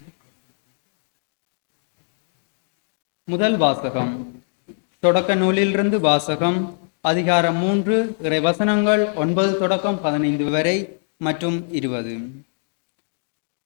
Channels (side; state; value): right; silent; digital silence